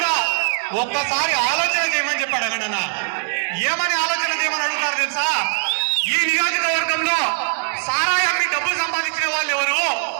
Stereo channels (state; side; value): silent; left; 65 dB below the other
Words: ఒక్కసారి ఆలోచన చేయమని చెప్పాడు అన్న. ఏమని ఆలోచన చేయమని అడుగుతారు తెలుసా? ఈ నియోజకవర్గంలో సారాయి అమ్మి డబ్బులు సంపాదించిన వాళ్ళు ఎవరు?